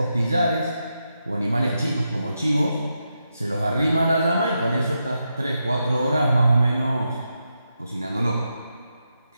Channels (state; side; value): inverted; both; correlation -0.86